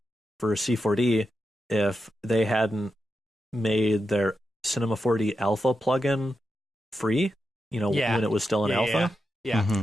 for C4D if they hadn't made their Cinema 4D Alpha plugin free. When it was still in alpha. Yeah,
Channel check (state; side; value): normal; both; correlation 0.88